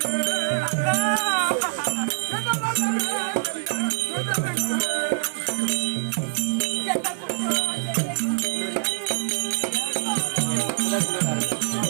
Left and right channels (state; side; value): silent; left; digital silence